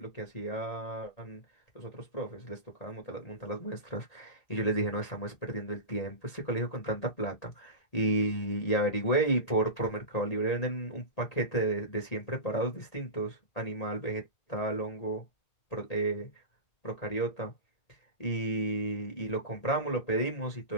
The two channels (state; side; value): late; right; 1.8 ms